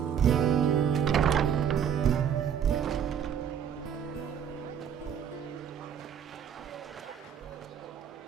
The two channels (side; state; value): left; quieter; 8.4 dB